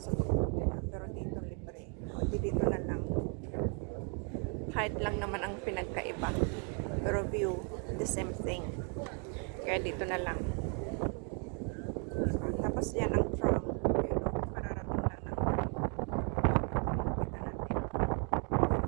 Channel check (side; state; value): left; quieter; 38.7 dB